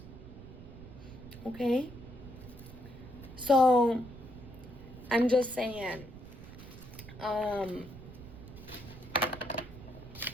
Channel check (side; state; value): right; noise; rumble, 15 dB below the sound